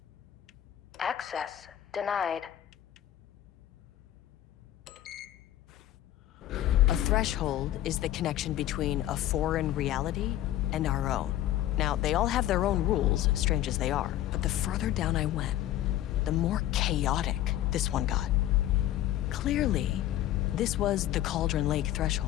Access denied. A threshold is the connection between a foreign reality and our own. Now, they all have their own rules, strange as they are, but the further down I went, the more chaotic this one got. Clearly, this was the Cauldron Lake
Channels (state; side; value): quieter; right; 13.2 dB